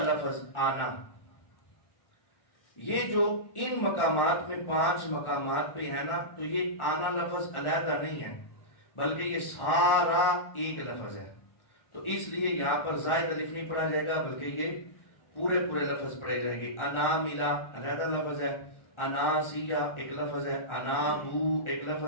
لفظ آنا۔ یہ جو ان مقامات میں 5 مقامات پہ ہے نا، تو یہ آنا لفظ علیحدہ نہیں ہے بلکہ یہ سارا ایک لفظ ہے، تو اس لیے یہاں پر زائد الف نہیں پڑھا جائے گا بلکہ یہ پورے لفظ پڑھے جائیں گے۔ اناملا علیحدہ لفظ ہے، اناسیہ ایک لفظ ہے، انابو ایک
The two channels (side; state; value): right; late; 1.6 ms